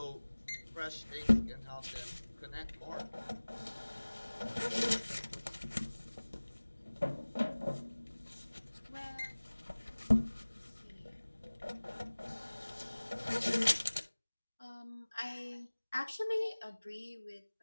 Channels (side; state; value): both; inverted; correlation -1.00